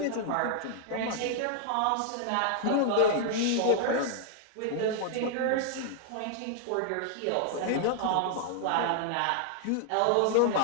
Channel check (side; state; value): both; different; correlation -0.01